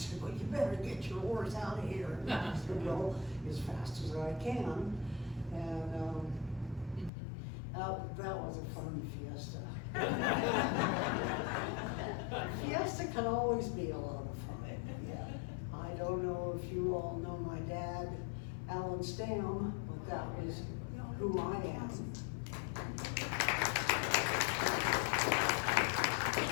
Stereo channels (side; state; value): right; drops out; at 7.1 s